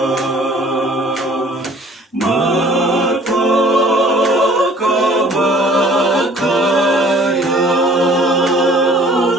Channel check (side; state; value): both; normal; correlation 0.53